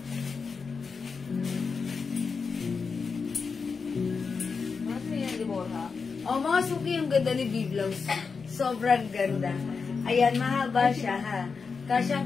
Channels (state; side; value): quieter; right; 5.1 dB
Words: ano yan, Deborah? Oh, mga suki, yung ganda ni V-Blouse. Sobrang ganda. Ayan, mahaba siya, ha.